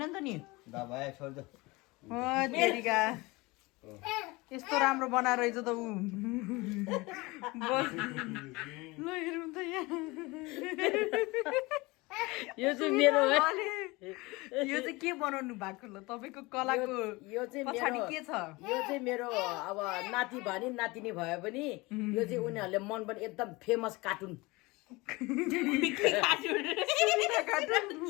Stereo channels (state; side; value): quieter; right; 23.3 dB